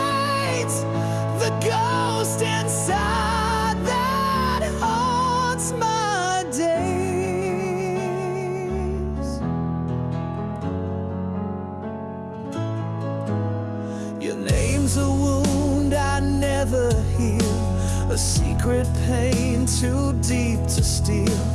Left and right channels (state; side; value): identical; both; correlation 1.00